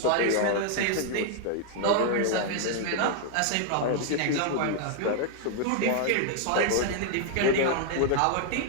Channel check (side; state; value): both; different; correlation 0.00